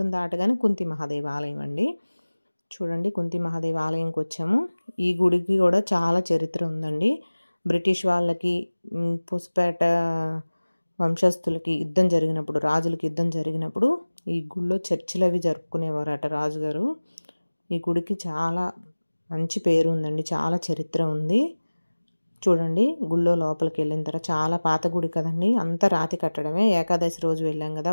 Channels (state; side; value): inverted; both; correlation -1.00